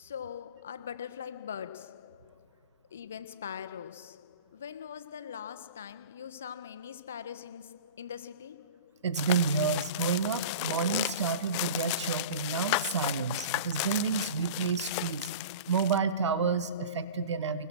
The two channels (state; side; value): inverted; both; correlation -0.33